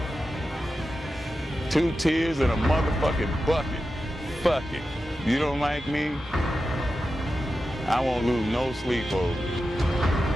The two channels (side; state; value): both; normal; correlation 0.91